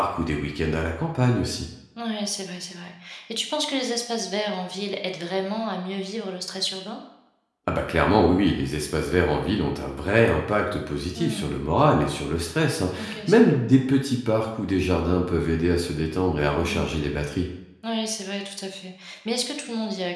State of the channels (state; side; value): identical; both; correlation 1.00